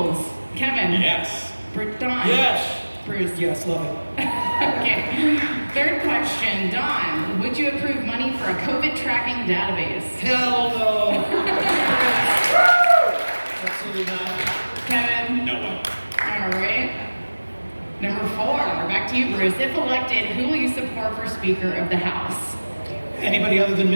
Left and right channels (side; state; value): both; inverted; correlation -1.00